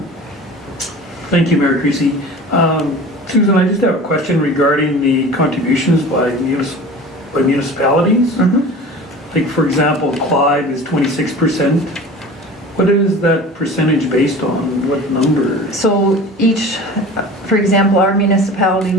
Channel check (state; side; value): normal; both; correlation 0.39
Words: Thank you, Mayor Creasy. Susan, I just have a question regarding the contributions by municipalities. Like, for example, Clive is 26%. What is that percentage based on? What number? So for example, our municipality,